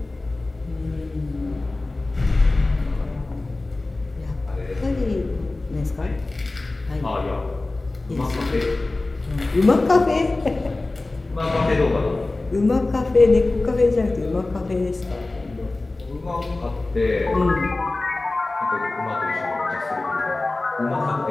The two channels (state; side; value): quieter; right; 3.1 dB